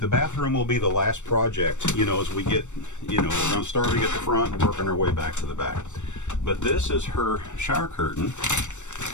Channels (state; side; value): late; right; 0.84 ms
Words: bathroom will be the last project, you know, as we get, you know, we're starting at the front and working our way back to the back. But this is her shower curtain